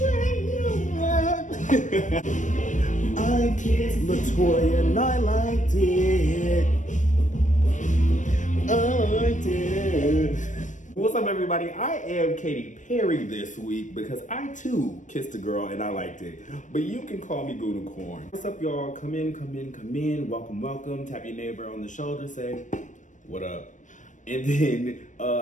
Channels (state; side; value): late; right; 0.36 ms